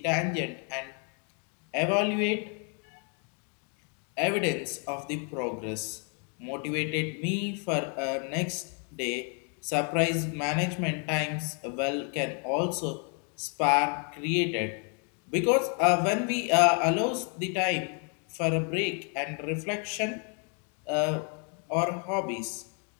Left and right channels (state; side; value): quieter; right; 39.9 dB